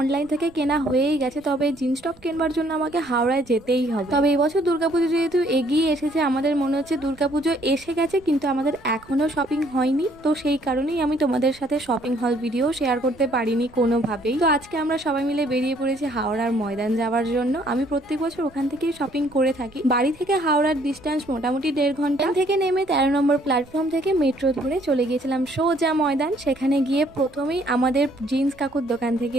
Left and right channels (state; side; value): noise; right; rumble, 26 dB below the sound